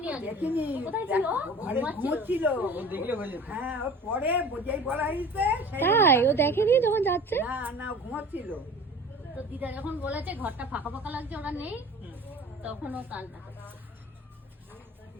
আগে। দেখিনি। কোথায় ছিল? ঘরে ঘুমোচ্ছিল। ও দেখলে হয়ে যেত। হ্যাঁ, ওর পরে যেই বলা হয়েছে সেই তাই ও দেখেনি যখন যাচ্ছে? না না ঘুমোচ্ছিল। তো দিদা যখন বলেছে ঘরটা ফাঁকা ফাঁকা লাগছে, ওরা নেই, তখন ও কান্না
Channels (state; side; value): normal; both; correlation 0.41